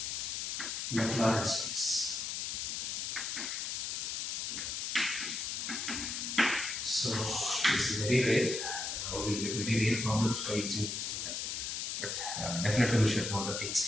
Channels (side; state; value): left; noise; hiss, 2 dB below the sound